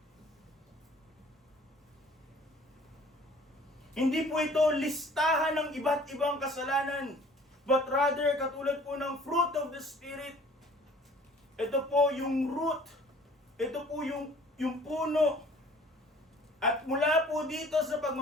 Hindi po ito listahan ng iba't ibang kasalanan, but rather katulad po ng fruit of the Spirit. Ito po yung root. Ito po yung puno. At mula po dito sa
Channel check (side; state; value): both; normal; correlation 0.52